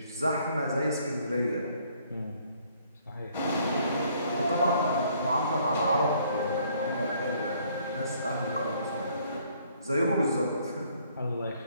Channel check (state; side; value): inverted; both; correlation -0.63